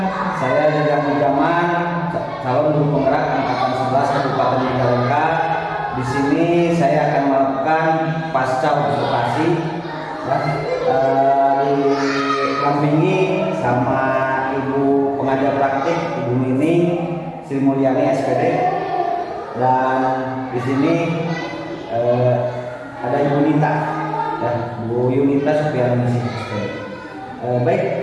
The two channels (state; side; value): identical; both; correlation 1.00